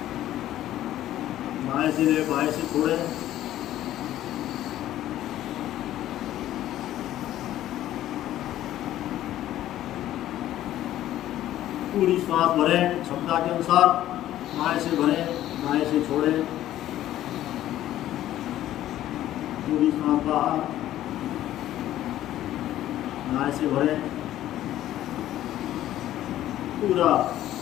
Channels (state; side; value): quieter; right; 13.2 dB